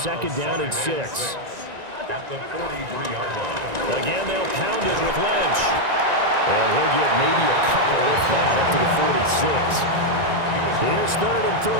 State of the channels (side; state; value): left; late; 1.9 ms